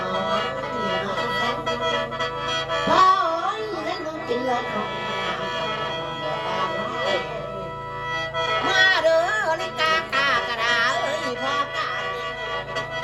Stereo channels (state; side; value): identical; both; correlation 1.00